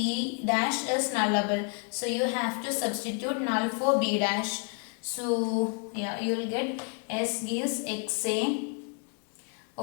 dash is nullable. So you have to substitute null for B dash. So yeah, you will get S gives XA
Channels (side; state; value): right; quieter; 39.9 dB